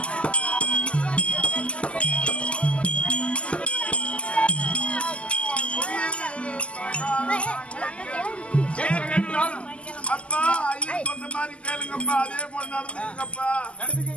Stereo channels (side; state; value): right; late; 0.056 ms